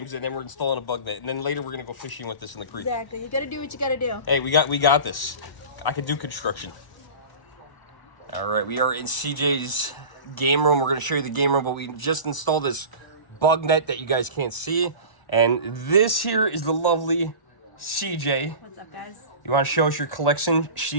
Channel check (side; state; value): right; late; 1.0 ms